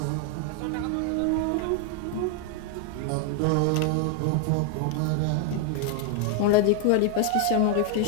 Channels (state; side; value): different; both; correlation 0.00